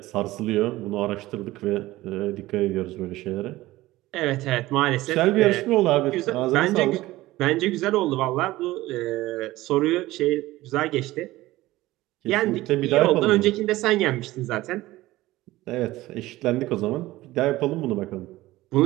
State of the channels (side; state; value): left; quieter; 17.5 dB